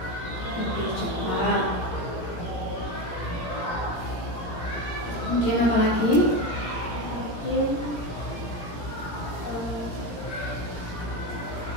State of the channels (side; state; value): right; late; 17 ms